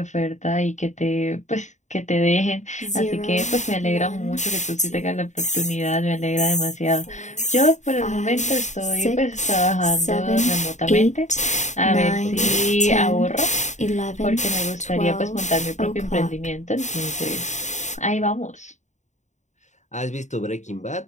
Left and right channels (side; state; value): right; late; 0.34 ms